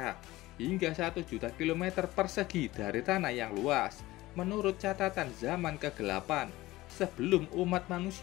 Hingga 1 juta kilometer persegi dari tanah yang luas. Menurut catatan zaman ke-8, sebelum umat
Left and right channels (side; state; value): right; quieter; 18.1 dB